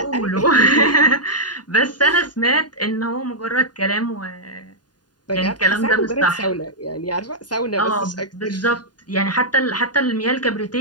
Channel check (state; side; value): late; right; 0.70 ms